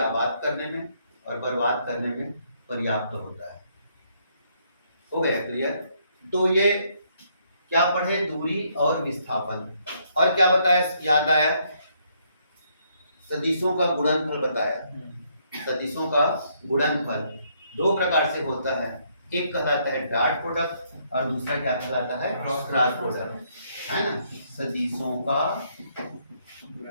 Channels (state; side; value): inverted; both; correlation -0.71